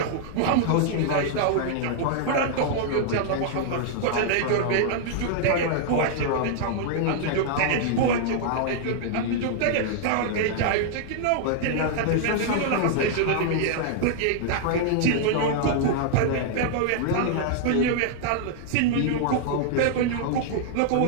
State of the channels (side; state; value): both; different; correlation -0.01